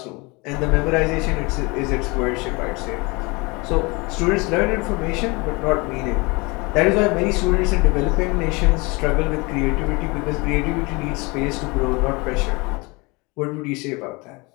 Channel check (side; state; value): right; quieter; 26.5 dB